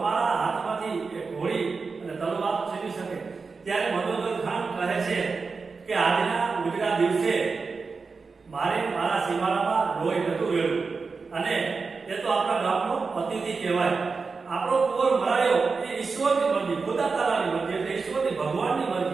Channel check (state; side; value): quieter; left; 4.6 dB